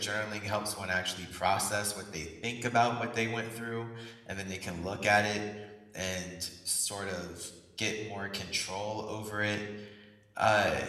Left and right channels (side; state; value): both; identical; correlation 1.00